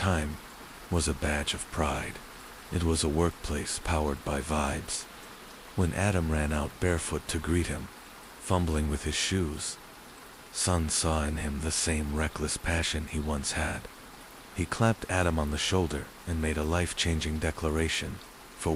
was a badge of pride. It was a workplace powered by vibes. When Adam ran out barefoot to greet him, fumbling with his shoes, Son saw in him the same reckless passion he once had. He clapped Adam on the shoulder and made a life-changing declaration. For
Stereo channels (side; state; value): both; identical; correlation 1.00